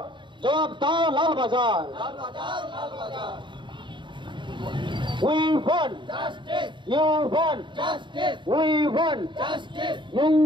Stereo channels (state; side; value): late; left; 0.23 ms